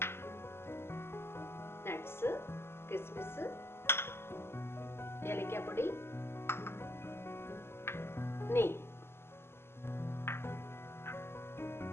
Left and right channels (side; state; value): right; late; 0.12 ms